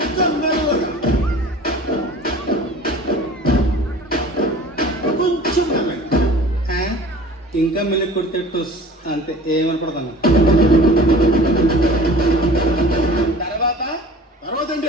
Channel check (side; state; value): both; normal; correlation 0.44